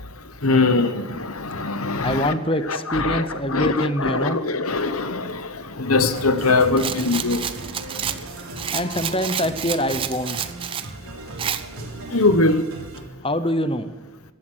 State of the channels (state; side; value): normal; both; correlation 0.14